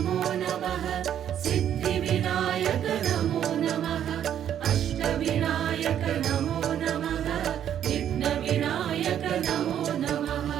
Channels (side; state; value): left; quieter; 10.0 dB